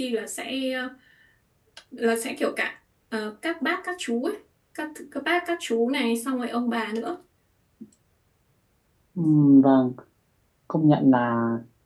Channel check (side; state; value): both; identical; correlation 1.00